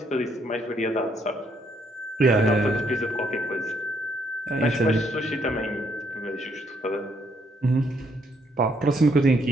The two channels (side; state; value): both; normal; correlation 0.71